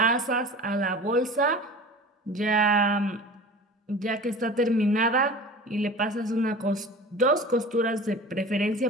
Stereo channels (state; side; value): normal; both; correlation 0.38